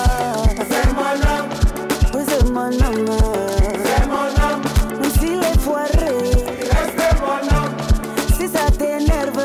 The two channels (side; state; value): both; identical; correlation 1.00